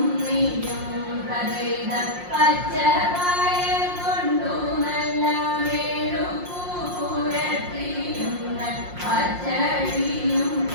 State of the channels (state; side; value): late; left; 5.6 ms